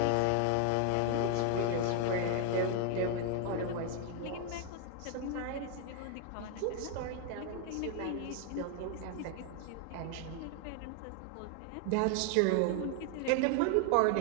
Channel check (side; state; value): both; different; correlation 0.01